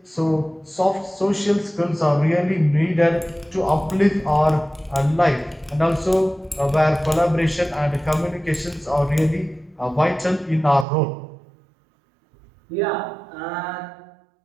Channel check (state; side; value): drops out; left; at 10.9 s